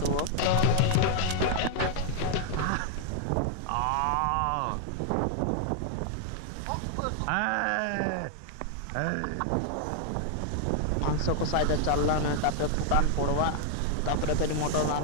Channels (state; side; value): different; both; correlation -0.01